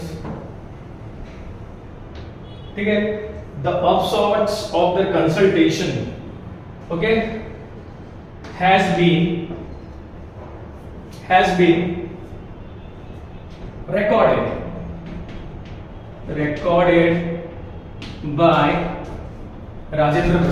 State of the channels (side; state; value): both; identical; correlation 1.00